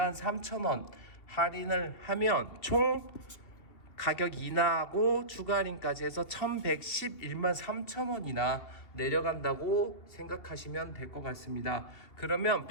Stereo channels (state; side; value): late; right; 2.8 ms